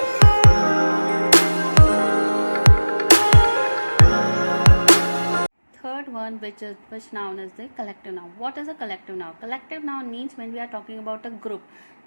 Which noun is the collective noun. What is a collective noun? Collective noun means when we are talking about a group,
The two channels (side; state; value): both; inverted; correlation -1.00